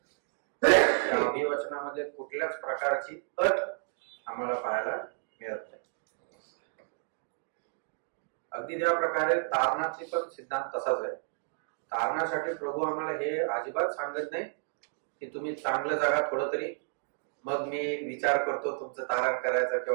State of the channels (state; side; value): silent; left; digital silence